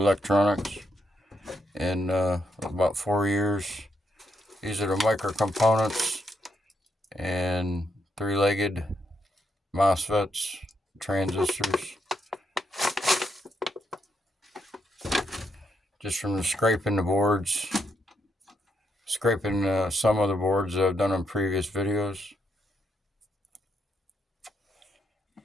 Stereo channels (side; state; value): both; normal; correlation 0.79